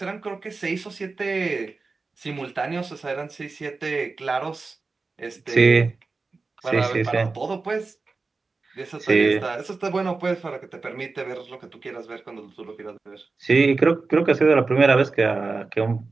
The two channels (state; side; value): quieter; left; 4.0 dB